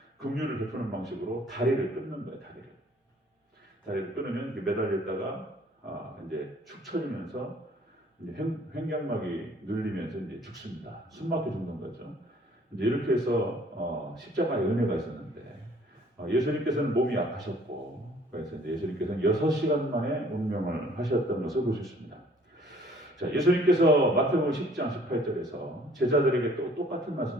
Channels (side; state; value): both; normal; correlation 0.57